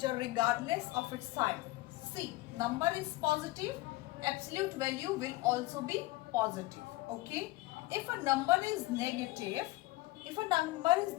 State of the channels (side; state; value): right; quieter; 19.9 dB